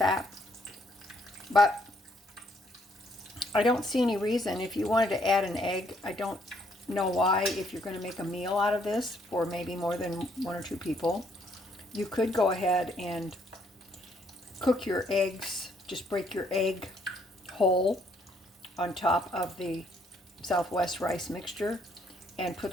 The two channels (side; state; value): both; normal; correlation 0.69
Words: but I don't see any reason. If you wanted to add an egg, I don't know why. If you're going to make a meal out of this for maybe more than one or two people, you could go ahead and cook your eggs. Just break your egg whole on top of the Southwest rice mixture and put